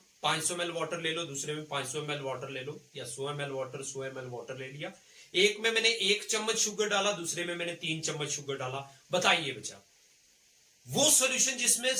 500 ml वाटर ले लो, दूसरे में 500 ml वाटर ले लो, या 100 ml वाटर, 100 ml वाटर ले लिया। एक में मैंने 1 चम्मच शुगर डाला, दूसरे में मैंने 3 चम्मच शुगर डाला। बताइए बच्चा, वो सॉल्यूशन जिसमें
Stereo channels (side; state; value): both; identical; correlation 1.00